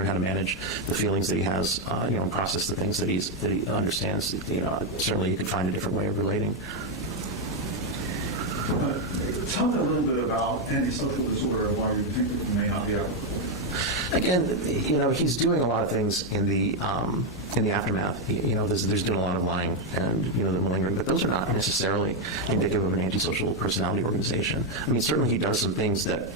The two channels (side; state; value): both; normal; correlation 0.03